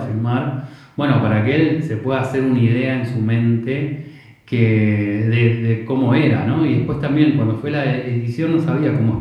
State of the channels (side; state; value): both; identical; correlation 1.00